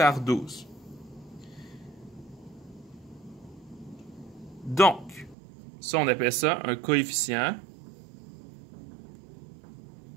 12. Donc, ça, on appelle ça un coefficient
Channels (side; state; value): left; drops out; at 5.4 s